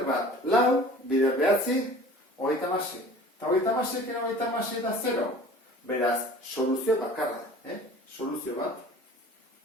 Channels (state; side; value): normal; both; correlation 0.44